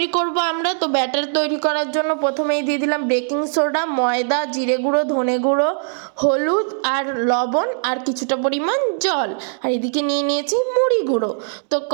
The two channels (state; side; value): silent; left; digital silence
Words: করব আমরা। তো ব্যাটার তৈরি করার জন্য প্রথমেই দিয়ে দিলাম বেকিং সোডা, ময়দা, জিরে গুঁড়ো, ধনে গুঁড়ো, হলুদ আর লবণ আর কিছুটা পরিমাণ জল। আর এদিকে নিয়ে নিয়েছি মুড়ি গুঁড়ো। তো